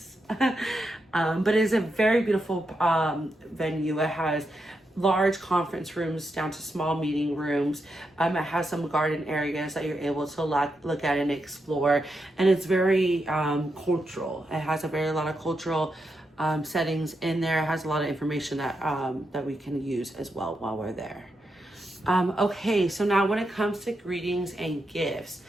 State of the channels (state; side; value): normal; both; correlation 0.85